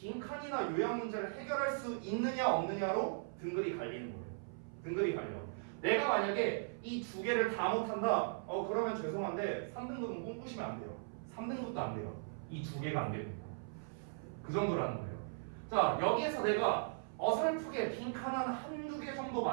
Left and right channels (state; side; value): silent; left; 52 dB below the other